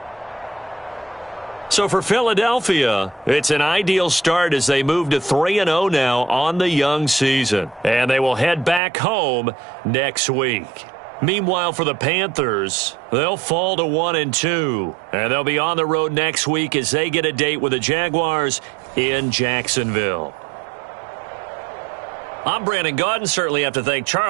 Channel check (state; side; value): drops out; left; at 8.8 s